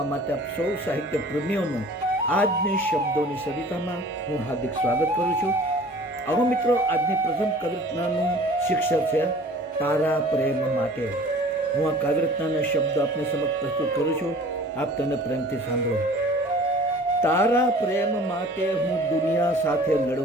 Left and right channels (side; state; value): both; normal; correlation 0.47